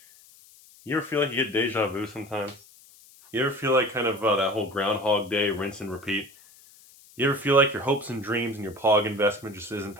You ever feel like you get deja vu sometimes? You ever feel like kind of that whole Groundhog Day, rinse and repeat? You ever feel like your hopes and dreams and your POG investment just isn't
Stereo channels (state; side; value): noise; left; hiss, 25 dB below the sound